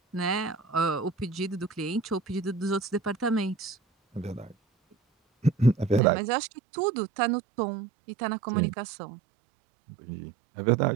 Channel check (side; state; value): left; drops out; at 6.0 s